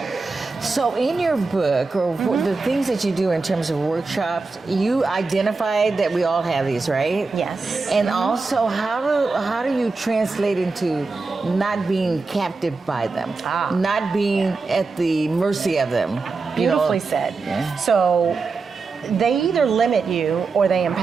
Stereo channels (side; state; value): left; quieter; 4.1 dB